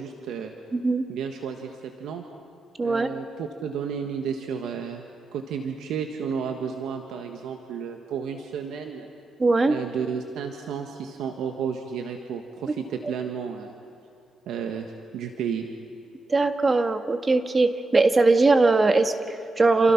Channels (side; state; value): left; quieter; 3.4 dB